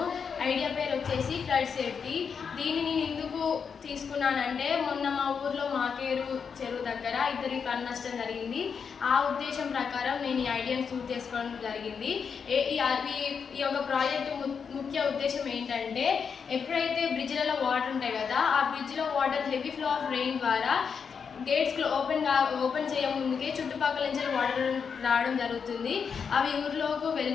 ఐడియా పేరు వచ్చేసి ఫ్లడ్ సేఫ్టీ. దీన్ని నేను ఎందుకు తీసుకున్నానంటే మొన్న మా ఊర్లో మాకేరు చెరువు దగ్గర ఇద్దరికి ప్రాణ నష్టం జరిగింది. ఆ ఉద్దేశం ప్రకారం నేను ఈ ఐడియాని చూస్ చేసుకోవడం జరిగింది. ఈ యొక్క ప్రాజెక్టు ముఖ్య ఉద్దేశం ఏంటంటే ఎప్పుడైతే బ్రిడ్జ్లలో వాటర్ ఉంటాయి కదా, ఆ బ్రిడ్జ్లో water heavy flow of rain ద్వారా గేట్స్ ఓపెన్ చేయముందుకే చుట్టుపక్కల నుంచి వాటర్ రావడం జరుగుతుంది. అవి ఊర్లోకి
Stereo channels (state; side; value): quieter; right; 6.3 dB